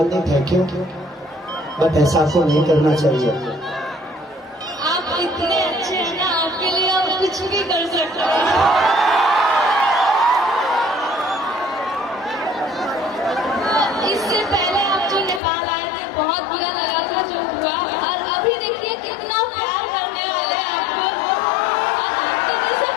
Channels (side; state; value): right; drops out; at 15.4 s